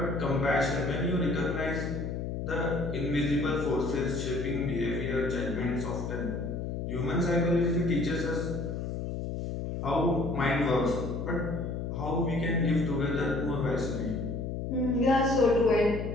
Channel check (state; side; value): noise; left; hum, 4 dB below the sound